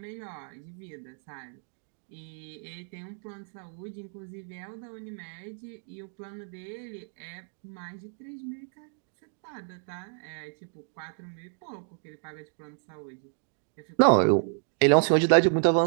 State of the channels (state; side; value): silent; left; digital silence